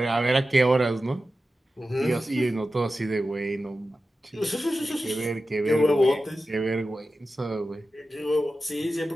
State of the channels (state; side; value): normal; both; correlation 0.93